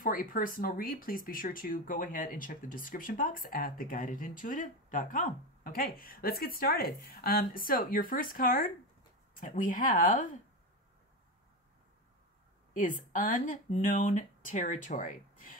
a personal read, please be sure to go ahead and check the description box at theguidedintuitive.com. Okay, let's get started. So your first card that we have is unknown territory.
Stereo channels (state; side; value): normal; both; correlation 0.17